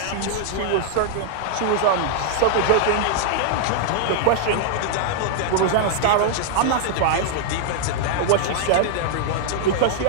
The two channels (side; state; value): both; different; correlation -0.01